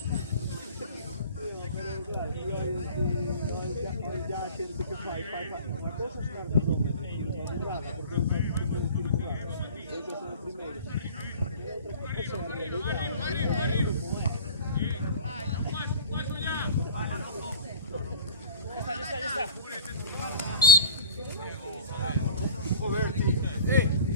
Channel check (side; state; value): both; inverted; correlation -0.41